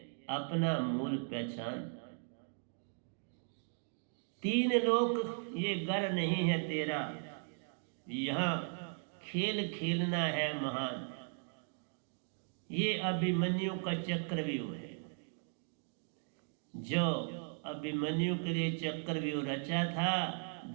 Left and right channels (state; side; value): silent; left; 53 dB below the other